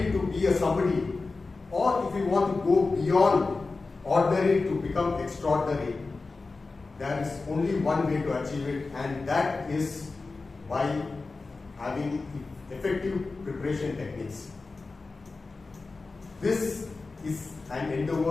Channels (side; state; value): right; quieter; 3.8 dB